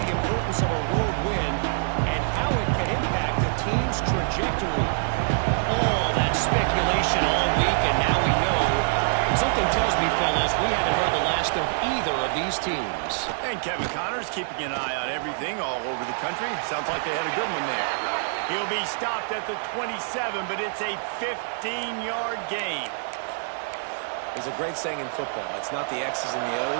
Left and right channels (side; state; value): left; silent; 56 dB below the other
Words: the importance of a road win and how it can impact a team's trajectory. All that speculation all week, and now we know. Something tells me, fellas, we haven't heard the last of either of these teams. And Kevin Connors keeping an eye on everything all over the country. Sounds like they had a good one there. He'll be stopped at the 27, but it's a 15-yard gain. There's a great saying in football. It's not the X's and the